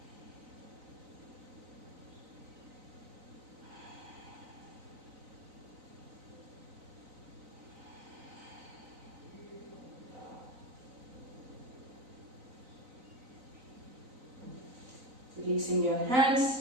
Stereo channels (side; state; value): left; late; 3.9 ms